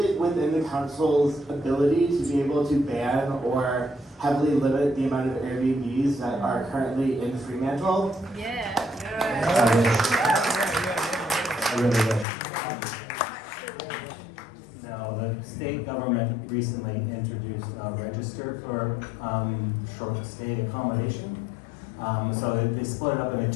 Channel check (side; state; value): right; drops out; at 12.2 s